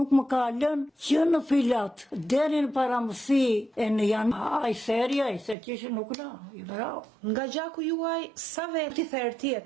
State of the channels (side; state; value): left; drops out; at 5.6 s